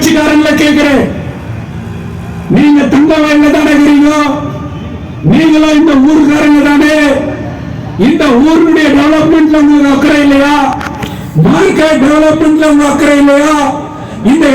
கேட்கிறேன், நீங்க தங்க வயல்ல தானே இருக்கிறீங்க, நீங்களும் இந்த ஊருக்காரங்க தானே, இந்த ஊருடைய டெவலப்மெண்ட்ல உங்களுக்கு அக்கறை இல்லையா? மார்க்கெட் டெவலப்மெண்ட்ல உங்களுக்கு அக்கறை இல்லையா? இந்த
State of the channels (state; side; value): identical; both; correlation 1.00